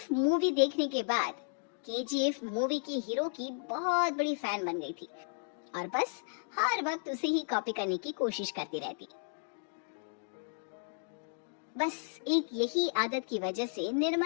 मूवी देखने के बाद केजीएफ मूवी की हीरो की बहुत बड़ी फैन बन गई थी और बस हर वक्त उसे ही कॉपी करने की कोशिश करती रहती। बस एक यही आदत की वजह से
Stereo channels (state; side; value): silent; right; digital silence